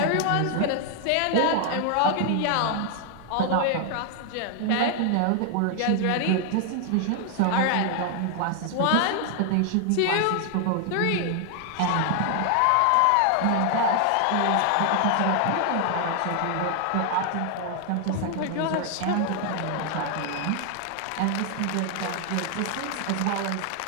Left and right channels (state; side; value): different; both; correlation 0.00